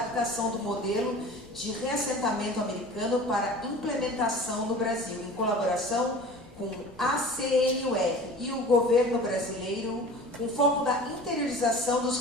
do modelo de reassentamento americano para implementação no Brasil, em colaboração com a CNUR e o governo brasileiro, com foco da interiorização dos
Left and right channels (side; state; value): both; normal; correlation 0.40